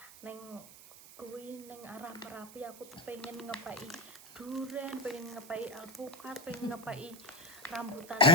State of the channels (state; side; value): noise; right; hiss, 18 dB below the sound